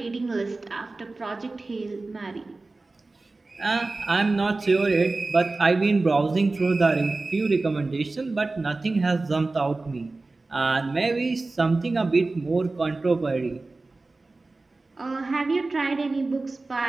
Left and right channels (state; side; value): quieter; left; 3.4 dB